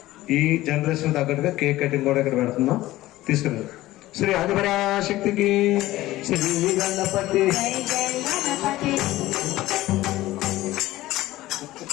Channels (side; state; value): right; quieter; 16.6 dB